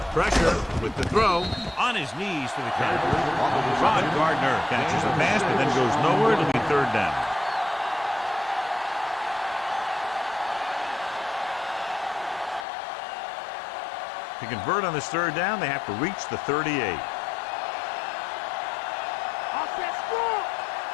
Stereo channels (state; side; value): drops out; right; at 12.7 s